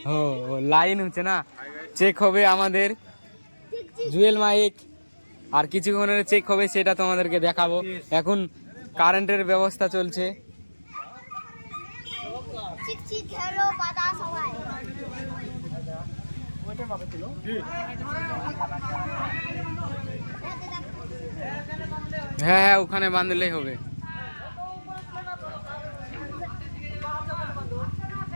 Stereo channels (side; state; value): both; inverted; correlation -1.00